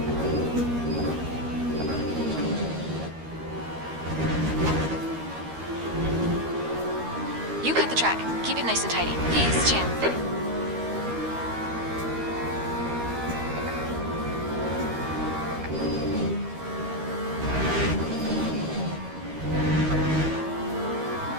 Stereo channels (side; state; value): left; late; 13 ms